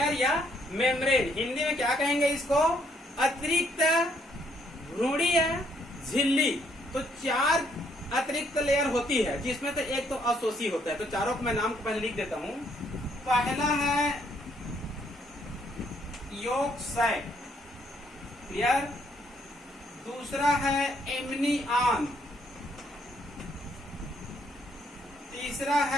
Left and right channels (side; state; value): both; normal; correlation 0.70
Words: या मेम्ब्रेन। हिंदी में क्या कहेंगे इसको, अतिरिक्त भ्रूणीय झिल्ली। तो 4 अतिरिक्त लेयर होती है, जिसमें तो एक तो असोसी होता है। तो चारों को मैं नाम को पहले लिख देता हूं। पहला है यॉर्क सैक, क्लियर? दूसरा है एमनियन, तीसरा